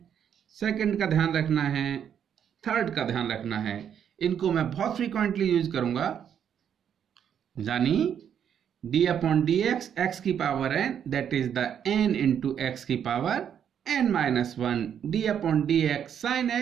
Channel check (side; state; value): left; quieter; 8.7 dB